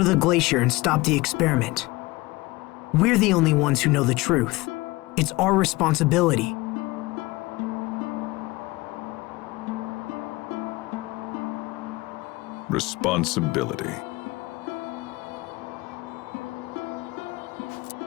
the glacier and stop the experiment. We're the only ones who know the truth. It's our responsibility. Responsibility.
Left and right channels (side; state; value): right; quieter; 21.5 dB